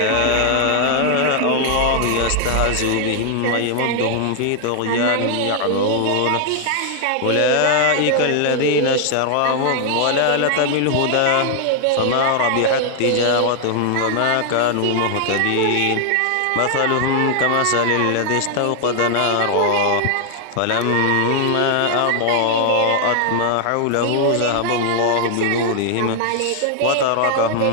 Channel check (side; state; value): both; different; correlation 0.00